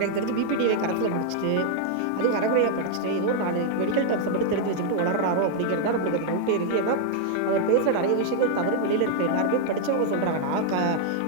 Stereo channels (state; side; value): different; both; correlation 0.00